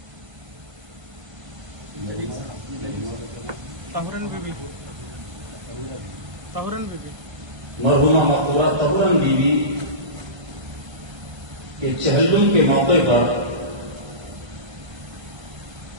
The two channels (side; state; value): left; late; 1.3 ms